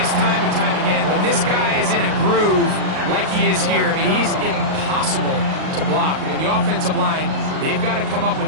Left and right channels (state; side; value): late; left; 38 ms